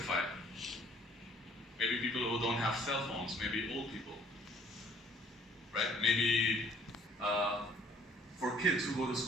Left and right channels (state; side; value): normal; both; correlation 0.58